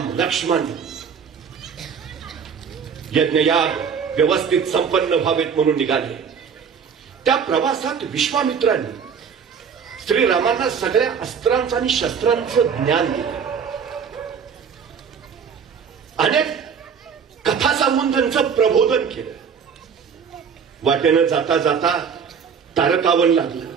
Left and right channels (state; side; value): quieter; left; 6.7 dB